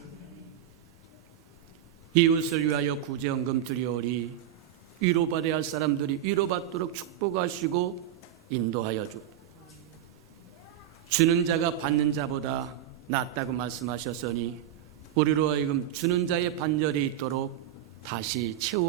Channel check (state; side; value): quieter; left; 10.9 dB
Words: 이웃을 위하여 구제헌금 드리오리. 위로받아야 할 사람들이 위로받도록 축복하시고 인도하여 주. 주는 자가 받는 자보다 낫다고 말씀하셨으니 우리로 하여금 주는 자의 반절이 있도록 다시